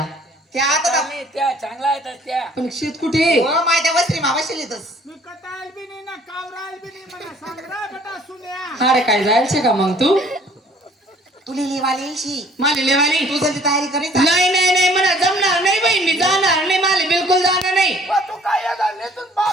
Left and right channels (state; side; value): normal; both; correlation 0.56